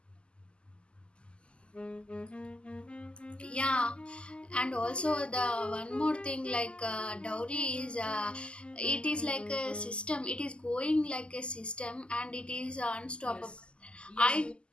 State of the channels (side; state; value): right; late; 0.051 ms